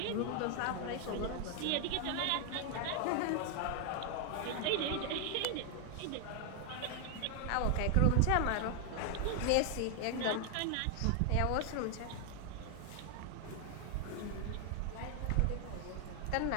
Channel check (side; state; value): both; different; correlation 0.00